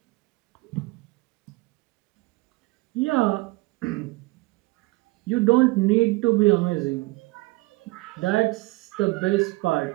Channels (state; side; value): quieter; left; 22.8 dB